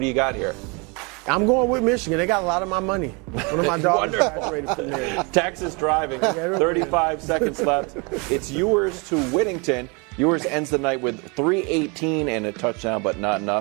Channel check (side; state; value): left; quieter; 30.8 dB